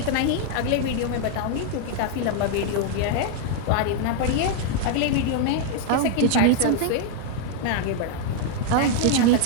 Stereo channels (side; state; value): both; different; correlation 0.00